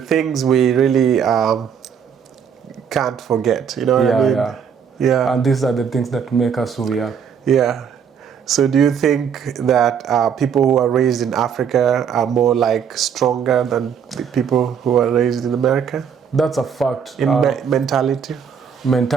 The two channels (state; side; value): quieter; left; 7.4 dB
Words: we really can't forget. You know what I mean? Yeah. Yeah. And these are the things that make us who we are. Yeah. So do you think that people who are raised in Africa are more like stronger than the people who are raised in America? That's a fact. In mentality?